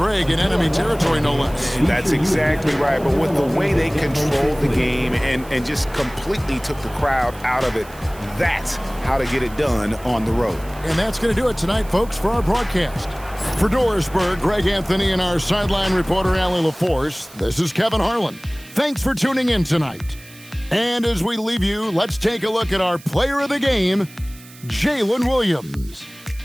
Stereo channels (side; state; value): right; noise; hiss, 21 dB below the sound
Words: in enemy territory, no less. That's exactly right. But with the way they controlled the game and just completely took the crowd out of it, that's how to get it done on the road. And that's going to do it tonight, folks, for our broadcast. For Dorisburg, Greg Anthony and our sideline reporter, Allie LaForce, this is Kevin Harlan. Thanks for tuning in tonight. And as we leave you, let's take a look at our player of the game, Jalen Williams.